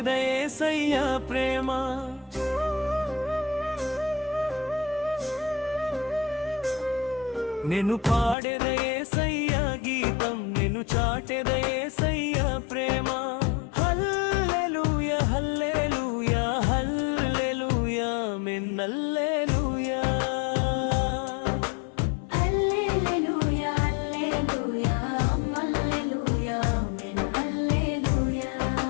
యేసయ్య ప్రేమ. నేను పాడేద యేసయ్య గీతం, నేను చాటెద యేసయ్య ప్రేమ. హల్లెలూయా హల్లెలూయా హల్లెలూయా ఆమేన్ హల్లెలూయా.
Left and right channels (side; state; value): right; drops out; at 8.3 s